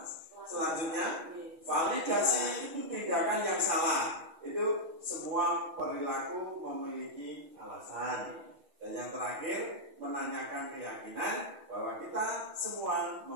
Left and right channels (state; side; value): late; left; 6.2 ms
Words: Selanjutnya, validasi tindakan yang salah. Itu semua perilaku memiliki alasan. Dan yang terakhir, menanyakan keyakinan bahwa kita semua